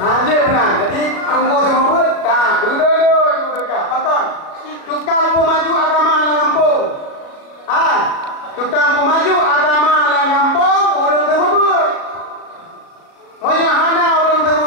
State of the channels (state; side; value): late; right; 37 ms